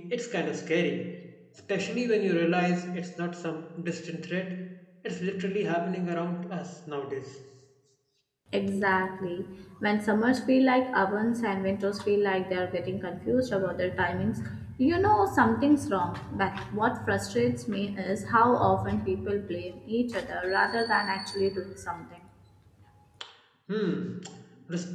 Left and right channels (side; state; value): both; identical; correlation 1.00